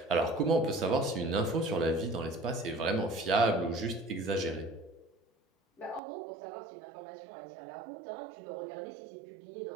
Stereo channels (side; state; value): left; drops out; at 6.0 s